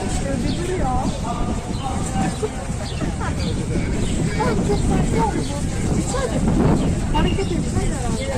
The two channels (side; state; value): both; identical; correlation 1.00